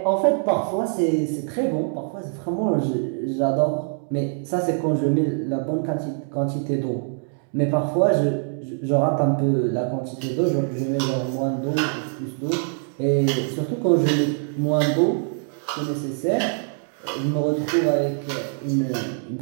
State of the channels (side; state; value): left; silent; 58 dB below the other